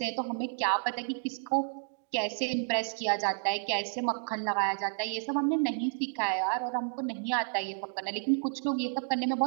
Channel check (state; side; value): silent; left; digital silence